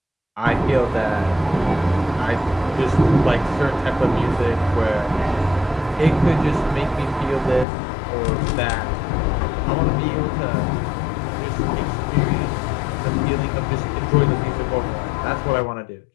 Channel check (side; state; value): right; drops out; at 7.7 s